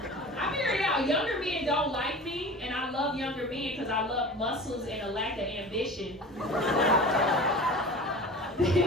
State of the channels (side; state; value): both; normal; correlation 0.37